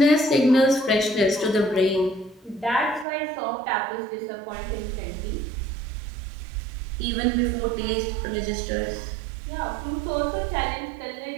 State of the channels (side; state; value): left; drops out; at 3.1 s